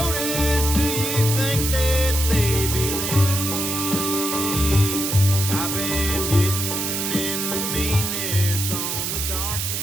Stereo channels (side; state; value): right; noise; hiss, 2 dB below the sound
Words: Do you think that they believe? I've been getting in the meanness on the dark